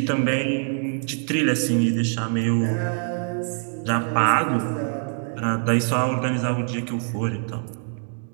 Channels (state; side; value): silent; left; 59 dB below the other